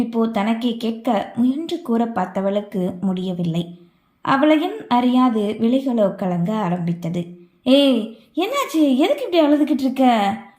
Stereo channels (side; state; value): both; identical; correlation 1.00